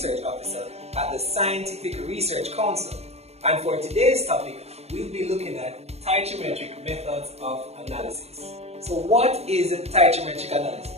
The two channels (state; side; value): late; left; 0.31 ms